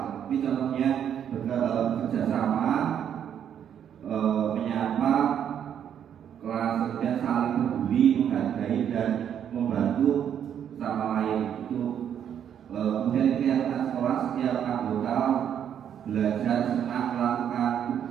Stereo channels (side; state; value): left; quieter; 9.1 dB